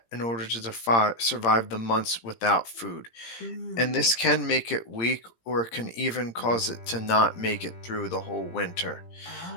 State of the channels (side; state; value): right; late; 17 ms